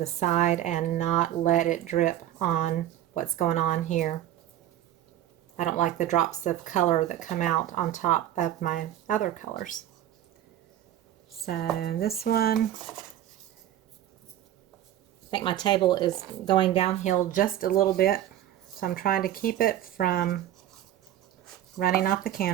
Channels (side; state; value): left; quieter; 12.2 dB